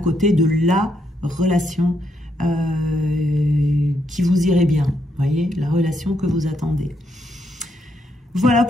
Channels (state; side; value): normal; both; correlation 0.77